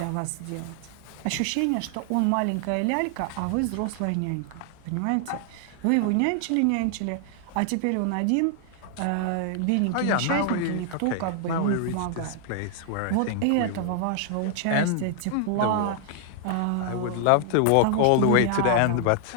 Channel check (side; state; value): both; different; correlation 0.00